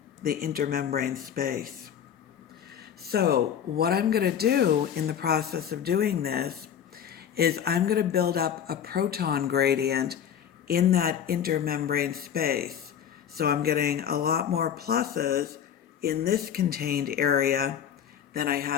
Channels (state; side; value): quieter; right; 8.8 dB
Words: the intermembrane space. So what I'm going to do in the process of doing this is I'm going to build up a proton gradient in that intermembrane space. So I'm getting a lot more pluses in this contained area than I